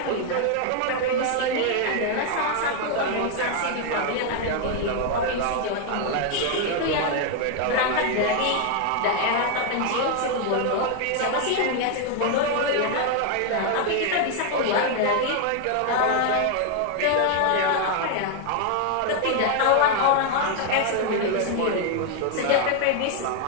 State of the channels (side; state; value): both; different; correlation 0.00